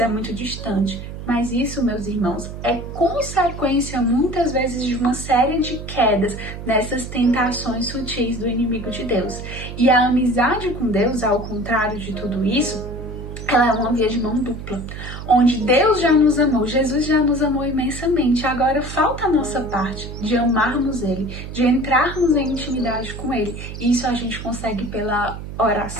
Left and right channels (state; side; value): noise; right; hum, 10 dB below the sound